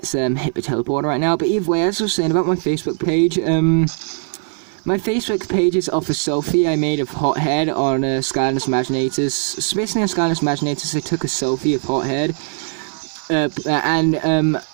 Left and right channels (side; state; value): left; silent; 56 dB below the other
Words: hit the teleporter right now. But either way, as I was saying about my Facebook page, my Facebook page is off a selfie I made of Hothead on Skylanders Imaginators. So basically on Skylanders Imaginators, I took a selfie of Hothead. And